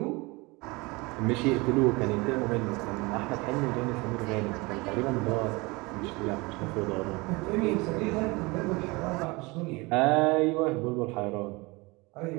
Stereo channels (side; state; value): left; quieter; 24.9 dB